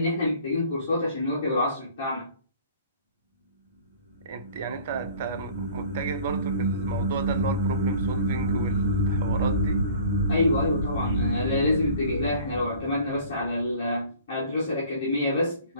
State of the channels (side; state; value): both; inverted; correlation -0.50